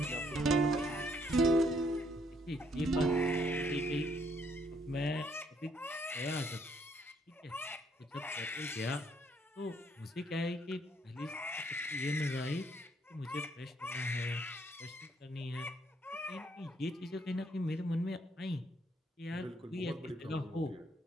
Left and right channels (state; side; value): normal; both; correlation 0.69